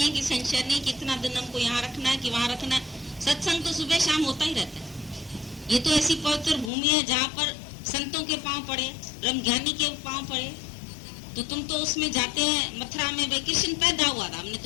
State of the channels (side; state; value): right; drops out; at 6.7 s